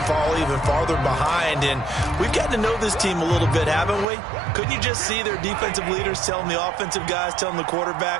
fall even farther behind. And we've gotten to know this team a little bit, haven't we? Couldn't you just see their defensive leaders telling the offensive guys, telling the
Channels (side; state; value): left; drops out; at 4.0 s